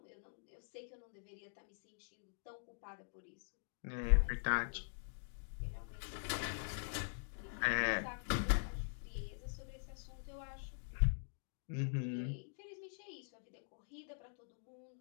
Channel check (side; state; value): right; silent; digital silence